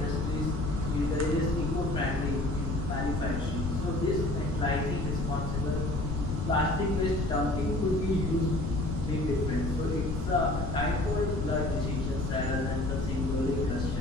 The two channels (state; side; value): noise; left; rumble, 2 dB below the sound